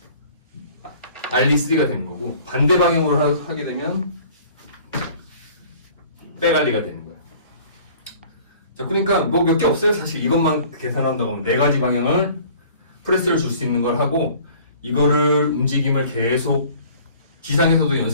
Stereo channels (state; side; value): inverted; both; correlation -0.50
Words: 알리3가 되는 거고 반대 방향으로 하게 되면 백알리가 되는 거예요. 자, 그러니까 뭐 몇 개 없어요. 사실 이것만 계산한다고 하면 네 가지 방향을 프레스를 줄 수 있는 걸 하고 이거를 움직임을 계속 지상에서도